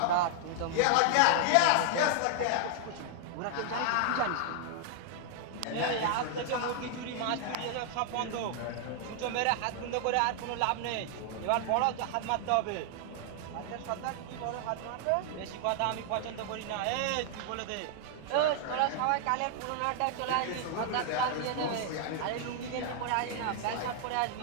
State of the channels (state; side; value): different; both; correlation 0.00